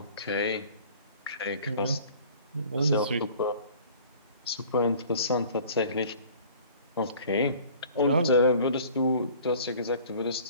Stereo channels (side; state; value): both; inverted; correlation -0.49